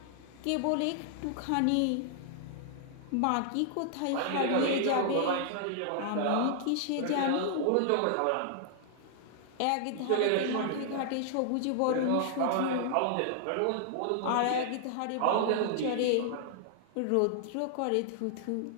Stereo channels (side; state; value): both; different; correlation -0.01